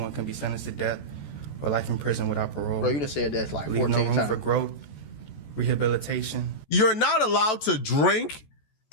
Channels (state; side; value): late; right; 14 ms